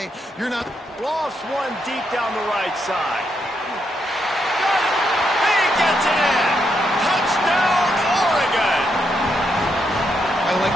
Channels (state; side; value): normal; both; correlation 0.79